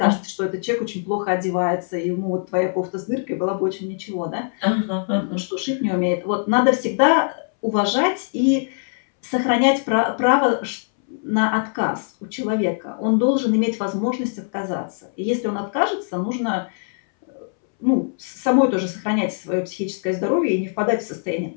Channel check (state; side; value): silent; right; 64 dB below the other